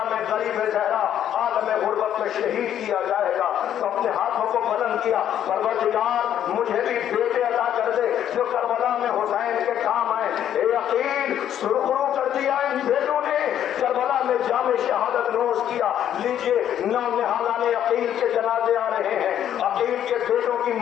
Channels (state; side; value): quieter; right; 10.4 dB